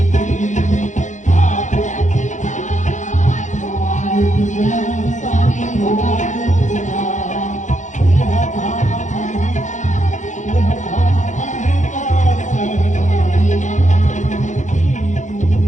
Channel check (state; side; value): late; right; 0.35 ms